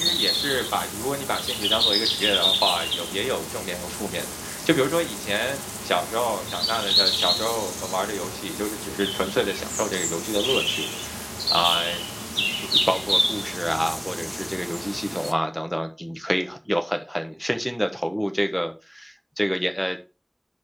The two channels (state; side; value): identical; both; correlation 1.00